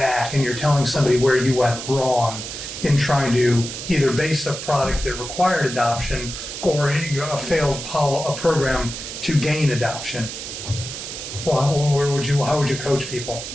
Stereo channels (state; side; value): noise; right; hiss, 8 dB below the sound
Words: and you're telling somebody where you went wrong in trying to either base a product that required adoption or a failed a program to gain adoption. Well, how would you coach people?